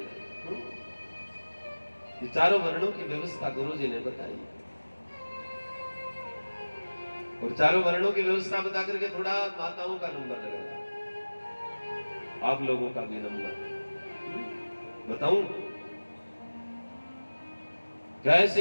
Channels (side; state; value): both; inverted; correlation -1.00